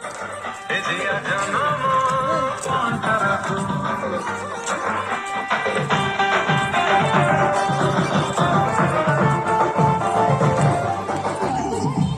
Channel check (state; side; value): identical; both; correlation 1.00